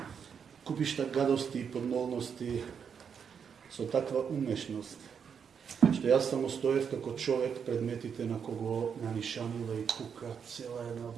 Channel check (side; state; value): left; quieter; 7.0 dB